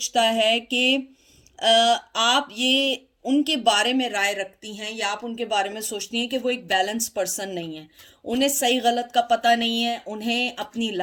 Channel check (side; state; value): both; identical; correlation 1.00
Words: है कि आप ये उनके बारे में राय रखती हैं, या आप उनके बारे में सोचती हैं कि वो एक बैलेंस पर्सन नहीं है। उन्हें सही गलत का पता नहीं है, उन्हें अपनी